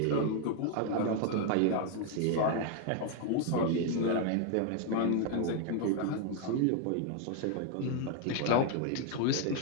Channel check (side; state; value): both; different; correlation 0.00